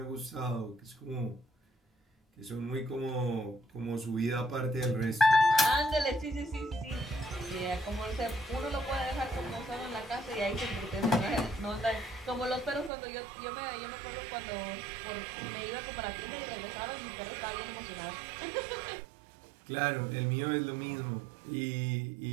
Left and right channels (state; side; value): drops out; left; at 12.9 s